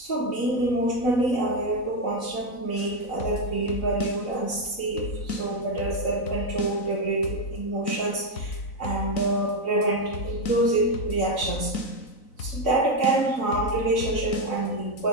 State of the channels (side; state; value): right; late; 3.9 ms